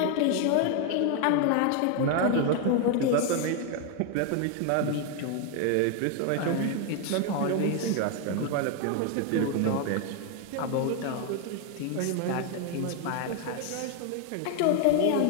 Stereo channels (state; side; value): different; both; correlation 0.01